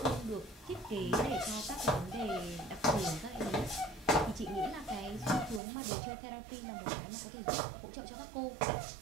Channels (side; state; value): left; drops out; at 5.6 s